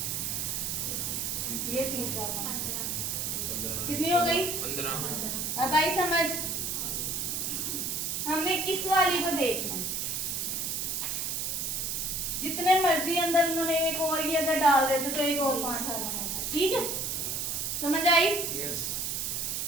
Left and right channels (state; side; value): noise; right; hiss, 1 dB below the sound